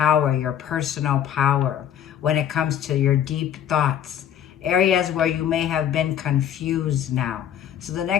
your personal power, when it comes to your deep thoughts. Areas where you may have been confused now. So the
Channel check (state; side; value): quieter; right; 9.7 dB